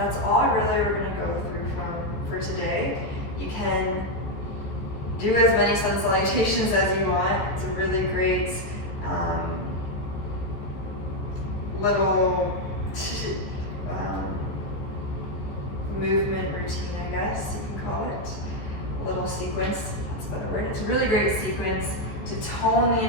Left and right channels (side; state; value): right; late; 14 ms